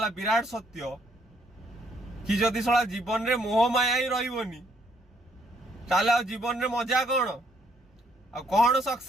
विराट सत्य कि जदि सला जीवन रे मोह माया ही रही ताले जीवन रे मजा कौन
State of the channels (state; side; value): normal; both; correlation 0.69